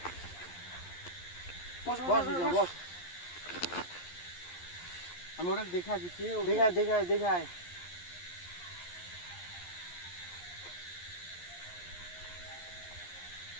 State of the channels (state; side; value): late; right; 11 ms